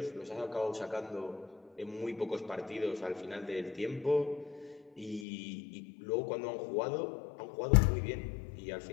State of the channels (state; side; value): drops out; right; at 5.2 s